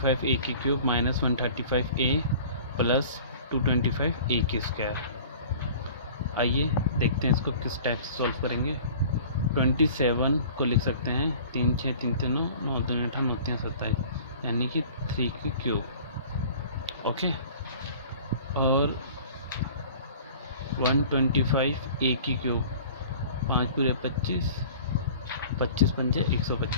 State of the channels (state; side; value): inverted; both; correlation -0.45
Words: ए की cube minus 135 a plus 225 a की स्क्वायर। आइए देखते हैं इसको किस टाइप से सॉल्व करेंगे। 27 को लिख सकते हैं 3 6 3 3 9 9 2 8 9 3 27, यानी कि 3 की क्यूब। ओके, और 125 ए की क्यूब, 5 पूरे 25, 25 पंजे